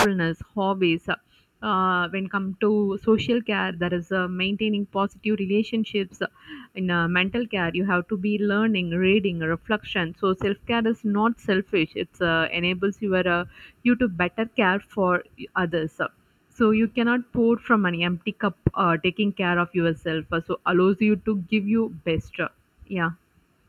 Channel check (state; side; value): identical; both; correlation 1.00